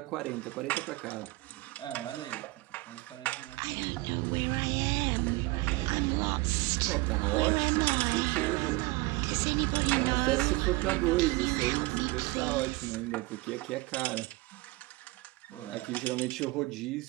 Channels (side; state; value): left; quieter; 22.2 dB